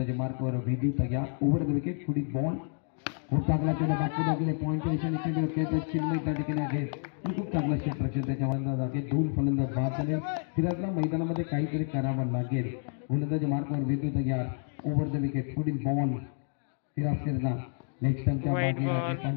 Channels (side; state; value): right; silent; 58 dB below the other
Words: मार्कवर वेदू तयार ओव्हर द विकेट पुढील बॉल खूप चांगला चेंडू बॅटमध्ये गेले पॉईंट पोझिशन चेंडू खेळतात चिन्मय त्या ठिकाणी आहे खूप चांगला क्षेत्ररक्षण त्याच्या अंदाज आहे 2 फलंदाज बाद झाले सिराजला मैदानामध्ये काहीतरी करावं लागेल गोलंदाजी मार्कवर वेदू तयार ओव्हर द विकेट पुढील बॉल सिराज सिरला नेक्स्ट टाइमच्या White ball.